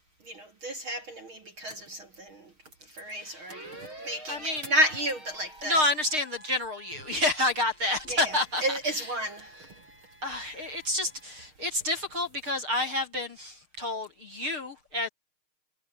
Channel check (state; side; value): late; left; 6.5 ms